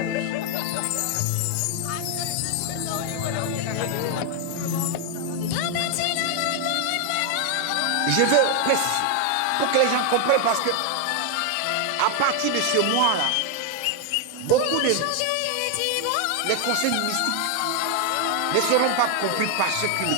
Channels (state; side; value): different; both; correlation 0.00